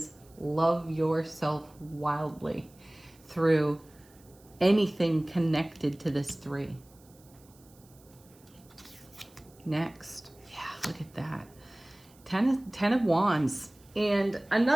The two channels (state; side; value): noise; right; hiss, 28 dB below the sound